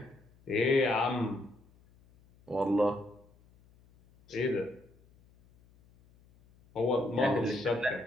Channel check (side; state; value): left; noise; hum, 29 dB below the sound